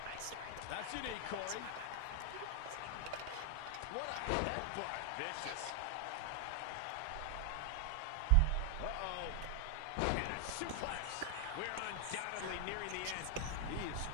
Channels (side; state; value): both; different; correlation 0.00